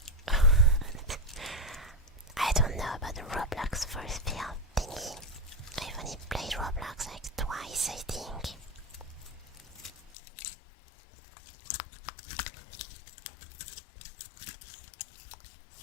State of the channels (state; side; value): drops out; right; at 10.1 s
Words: I don't know about the Roblox force field thingy. I've only played Roblox like twice, I think.